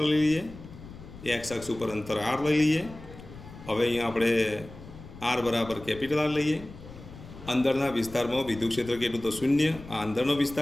લઈ લઈએ, x અક્ષ ઉપર અંતર r લઈ લઈએ. હવે અહીંયા આપણે r બરાબર કેપિટલ R લઈએ અંદરના વિસ્તારમાં વિદ્યુત ક્ષેત્ર કેટલું તો શૂન્ય. આ અંદરનો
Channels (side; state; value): left; noise; rumble, 16 dB below the sound